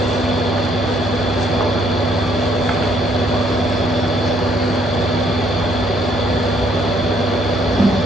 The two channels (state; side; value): normal; both; correlation 0.67